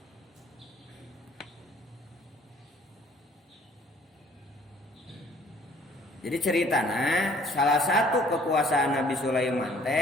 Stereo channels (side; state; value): both; normal; correlation 0.57